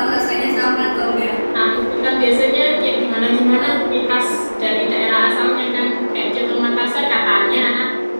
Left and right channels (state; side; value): inverted; both; correlation -1.00